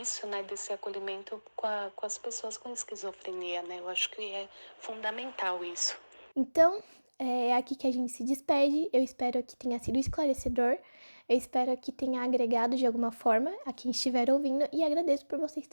né, desse acolhimento com as pessoas com esquizofrenia, né? Eu acho que é fundamental isso. Então, é aqui que a gente se despede. Eu espero que tenha sido esclarecedor. Eu espero que tenha agregado de alguma forma a quem estiver ouvindo. E agradeço por vocês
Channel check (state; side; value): inverted; both; correlation -1.00